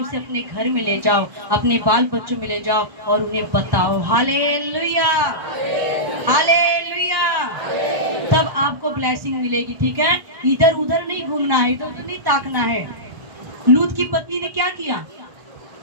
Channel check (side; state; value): left; late; 1.1 ms